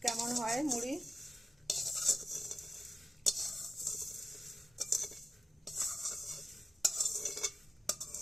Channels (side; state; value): both; normal; correlation 0.92